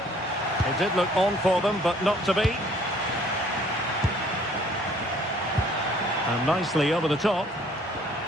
It did look on for them, but not to be. And nicely over the top.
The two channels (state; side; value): normal; both; correlation 0.58